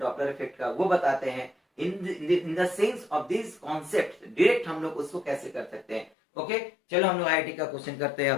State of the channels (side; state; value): right; drops out; at 6.1 s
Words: इफेक्ट का वो बताते हैं, in the sense of this concept direct हम लोग उसको कैसे कर सकते हैं। ओके, चलो हम लोग आईआईटी का क्वेश्चन करते हैं।